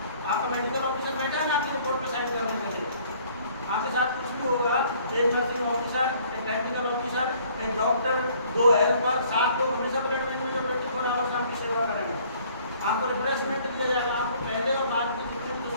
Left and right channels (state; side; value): inverted; both; correlation -0.58